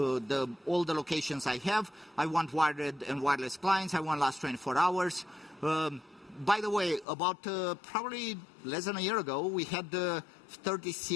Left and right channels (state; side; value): drops out; right; at 7.1 s